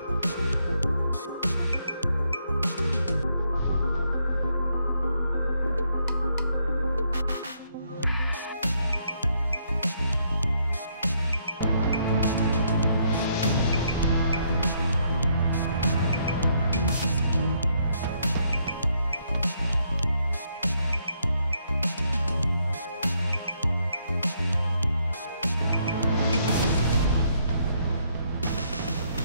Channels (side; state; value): both; inverted; correlation -0.73